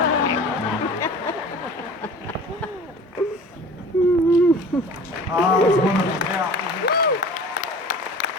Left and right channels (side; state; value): both; normal; correlation 0.42